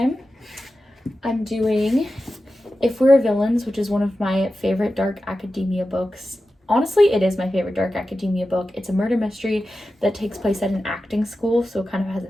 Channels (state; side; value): normal; both; correlation 0.93